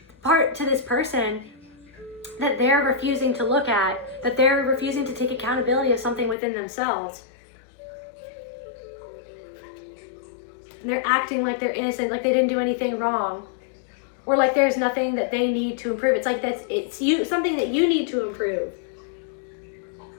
to this person that they're refusing to look at, that they're refusing to take accountability of something within themselves. And they're acting like they're innocent, like they didn't do anything wrong, or like there's nothing that they need to improve. It's like it's you, something that you need to improve.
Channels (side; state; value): right; drops out; at 6.4 s